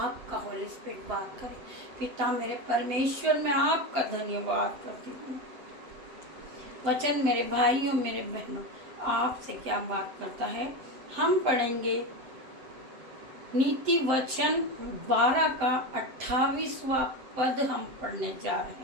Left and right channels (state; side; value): late; left; 7.7 ms